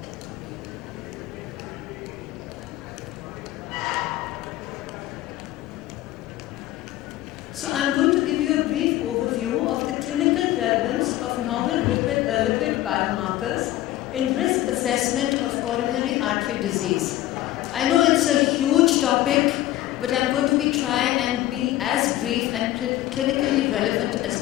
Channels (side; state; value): right; quieter; 14.8 dB